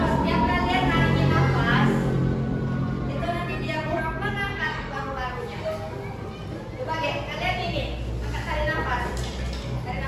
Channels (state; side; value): identical; both; correlation 1.00